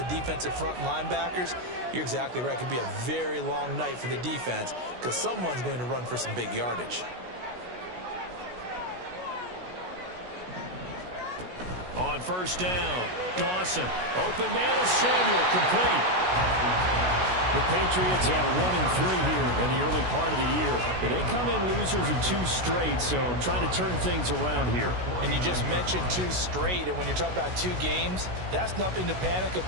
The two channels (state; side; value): late; left; 16 ms